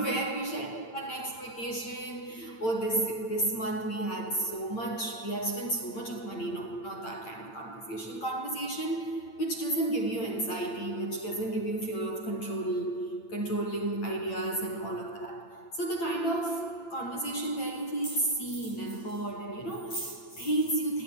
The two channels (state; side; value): late; right; 8.8 ms